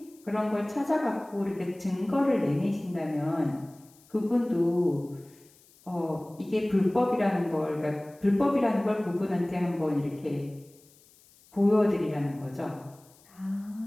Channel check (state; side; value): noise; left; hiss, 28 dB below the sound